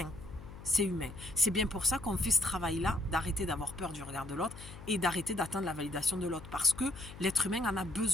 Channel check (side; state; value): left; noise; hum, 15 dB below the sound